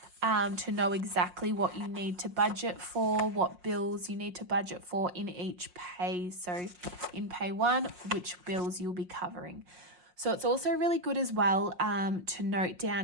to know exactly what you need to budget for, what bills you need to budget for in each pay. So in pay one, which bills you'll be covering. So it's also really good as well to note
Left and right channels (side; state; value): left; late; 5.6 ms